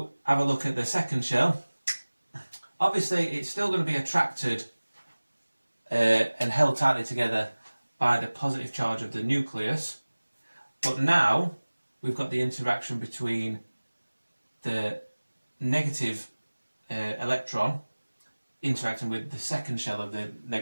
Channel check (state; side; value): inverted; both; correlation -1.00